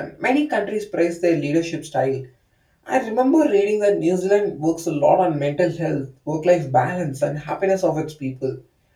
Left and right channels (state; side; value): identical; both; correlation 1.00